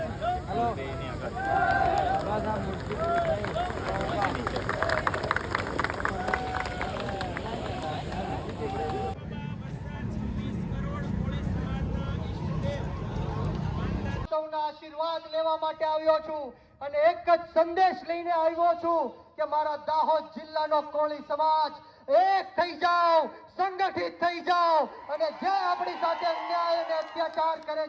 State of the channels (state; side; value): identical; both; correlation 1.00